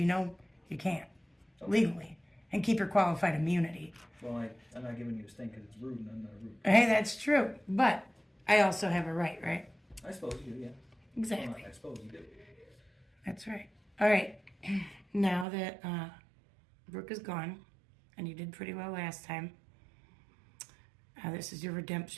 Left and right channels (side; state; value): left; drops out; at 15.5 s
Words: know you can't. Legally. And keep your qualified immunity. Well, I'm not giving you a stink because it's rude and I'm not rude. Hey, that's true. But I also have a right, right? I suppose you do, yeah. Exactly. Well, I suppose you do. That's right. All right. Now that Brooke is gone, and you did pretty well last time, this is your